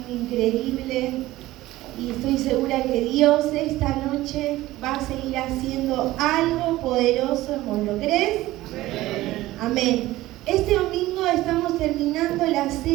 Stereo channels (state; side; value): quieter; left; 16.9 dB